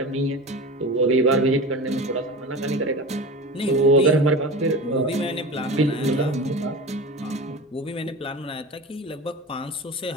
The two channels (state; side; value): normal; both; correlation 0.30